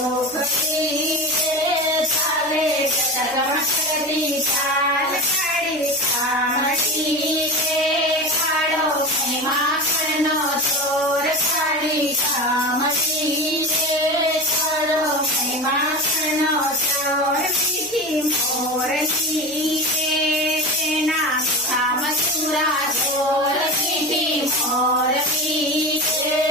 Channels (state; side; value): noise; right; hum, 27 dB below the sound